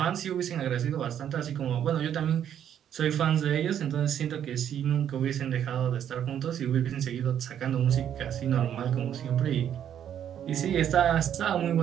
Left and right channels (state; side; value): quieter; left; 9.7 dB